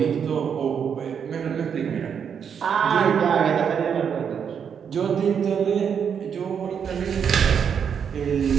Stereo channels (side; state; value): left; quieter; 7.4 dB